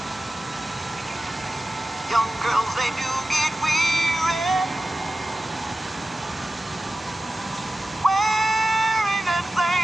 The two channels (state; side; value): normal; both; correlation 0.95